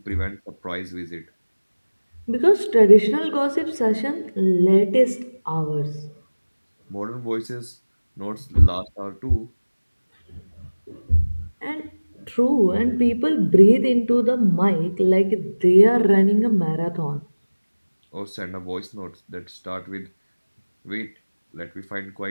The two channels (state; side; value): inverted; both; correlation -1.00